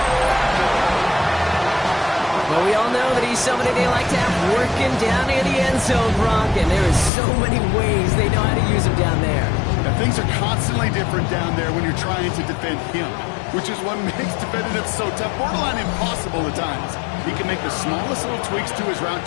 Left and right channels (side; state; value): right; drops out; at 7.1 s